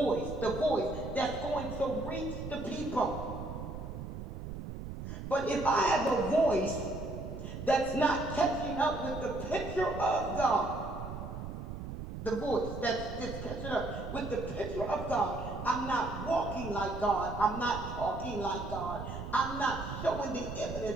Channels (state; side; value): noise; right; rumble, 8 dB below the sound